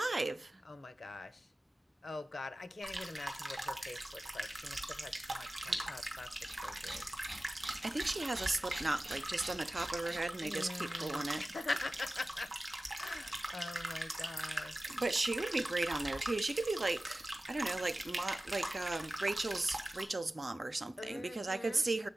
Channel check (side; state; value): both; normal; correlation 0.96